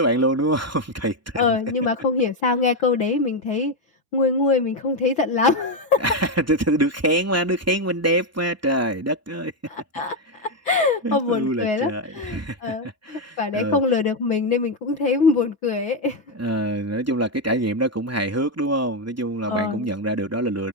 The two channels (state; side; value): normal; both; correlation 0.04